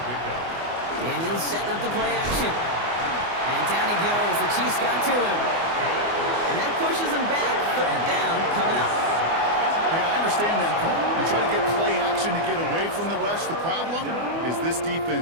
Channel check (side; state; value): left; late; 24 ms